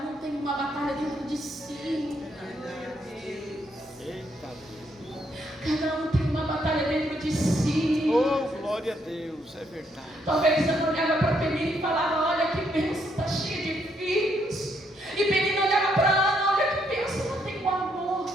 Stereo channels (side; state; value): both; normal; correlation 0.74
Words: um tem uma batalha dentro de si. Cada um tem uma batalha dentro de si. Oh, glória a Deus, é verdade. Talvez Ana olhava para Penina e falava: olha que bênção, está cheia de filhos. E Penina olhava para Ana: olha que bênção, não tenho amor